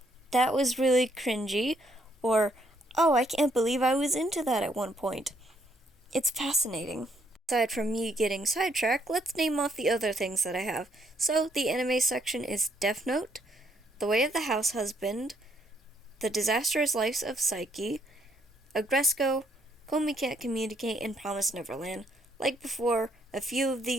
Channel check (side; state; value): both; normal; correlation 0.70